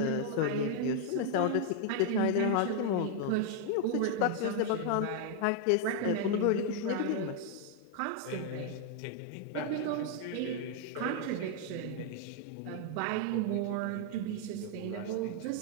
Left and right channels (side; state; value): both; different; correlation 0.00